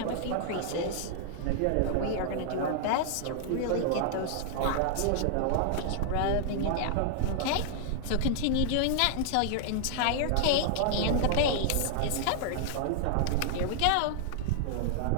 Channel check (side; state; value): both; different; correlation -0.01